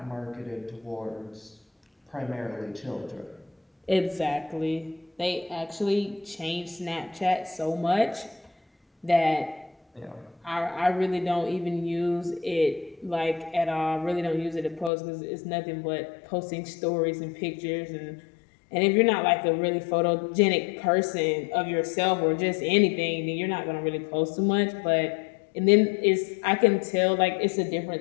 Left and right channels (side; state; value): right; drops out; at 14.9 s